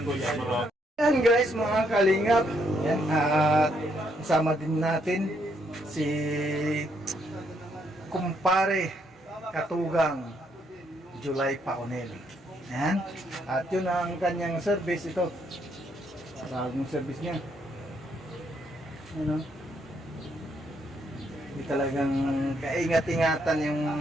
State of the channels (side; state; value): both; normal; correlation 0.74